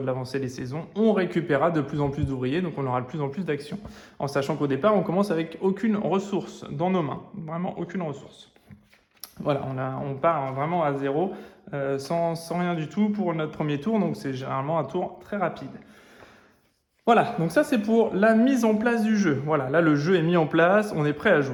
de l'avancée des saisons, on récupérera de plus en plus d'ouvriers, donc on aura de plus en plus d'actions. En sachant qu'au départ, on commence avec aucune ressource dans nos mains, vraiment aucune ressource. Voilà, on part vraiment à zéro, sans rien du tout pour notre premier tour, donc c'est généralement un tour très rapide. Voilà, donc ça c'est pour la mise en place du jeu. Voilà, là le jeu est mis en place, on est prêt à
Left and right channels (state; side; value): identical; both; correlation 1.00